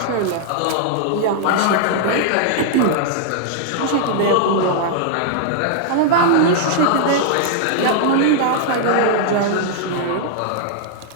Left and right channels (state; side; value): different; both; correlation -0.01